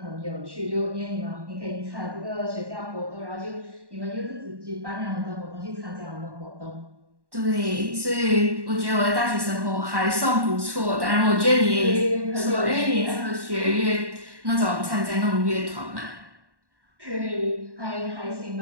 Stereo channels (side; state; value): left; late; 1.1 ms